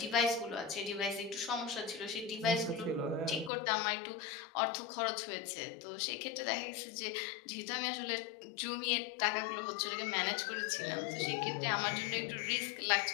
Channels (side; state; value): right; drops out; at 3.5 s